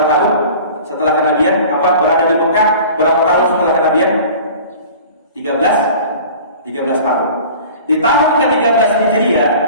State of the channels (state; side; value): inverted; both; correlation -0.43